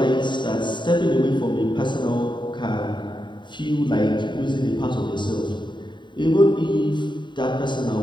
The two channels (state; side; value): late; right; 0.23 ms